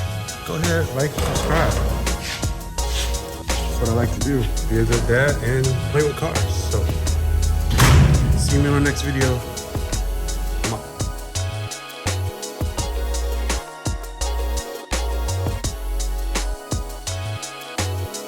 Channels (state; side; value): identical; both; correlation 1.00